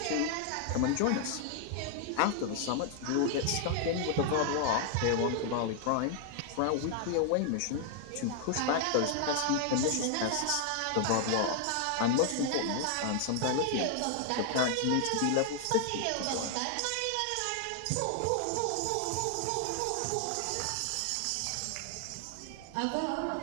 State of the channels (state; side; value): different; both; correlation 0.00